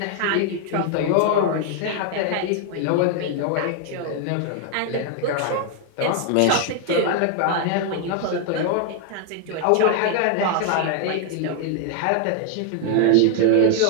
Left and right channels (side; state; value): both; different; correlation 0.00